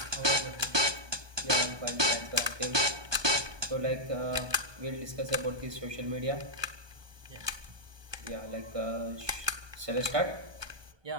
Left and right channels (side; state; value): left; late; 1.2 ms